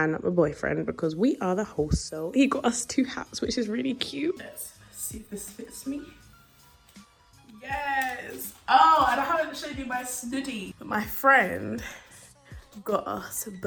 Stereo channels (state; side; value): identical; both; correlation 1.00